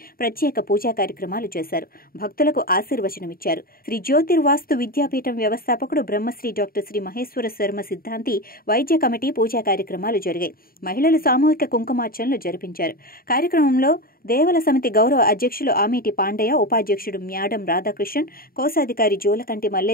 ప్రత్యేక పూజా కార్యక్రమాలు చేశారు. భక్తులకు ఆశీర్వచనమిచ్చారు. శ్రీ జ్యోతిర్వాస్తు విద్యాపీఠం వ్యవస్థాపకుడు బ్రహ్మశ్రీ డాక్టర్ శ్రీ మహేశ్వర శర్మ సిద్ధాంతి వైద్య కమిటీ పూజా కార్యక్రమాలు జరిగాయి. మహిళలు సామూహిక కుంకుమార్చనలు జరిపించారు. కార్యక్రమంలో దేవల సమితి గౌరవ అధ్యక్షులు ఆమీటి పాండయ్య, ఉపాధ్యక్షుడు మ్యాడం రాధాకృష్ణన్, కోశాధికారి జోలకంటి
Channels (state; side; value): late; right; 0.43 ms